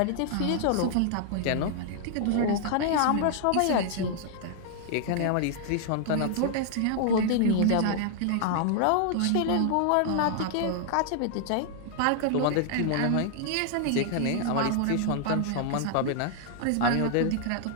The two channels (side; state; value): both; different; correlation 0.00